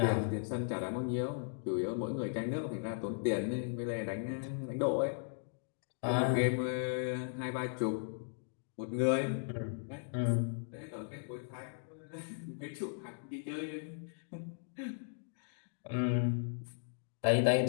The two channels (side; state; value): right; silent; digital silence